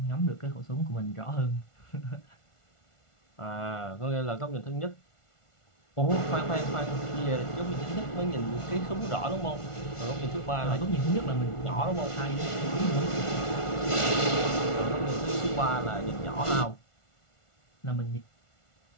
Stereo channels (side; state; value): right; late; 1.4 ms